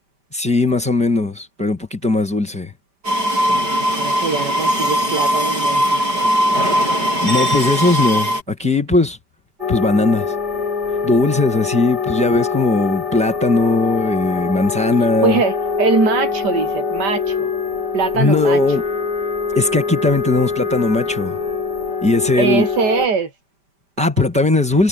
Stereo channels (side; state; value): left; late; 5.1 ms